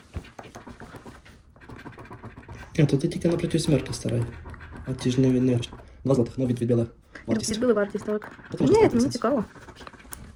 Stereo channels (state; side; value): identical; both; correlation 1.00